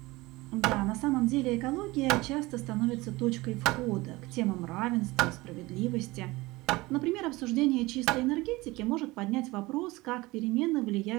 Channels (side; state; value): left; quieter; 21.2 dB